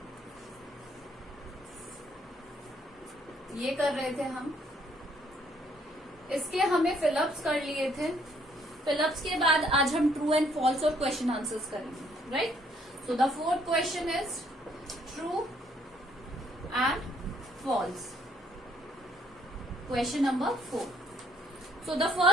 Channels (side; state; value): both; normal; correlation 0.66